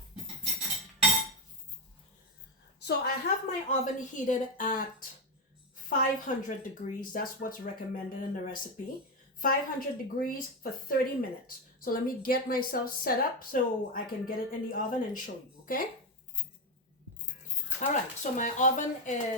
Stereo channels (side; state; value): both; normal; correlation 0.11